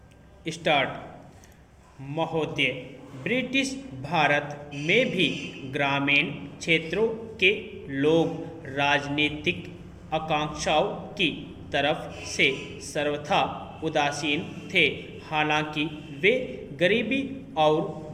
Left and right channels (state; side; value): identical; both; correlation 1.00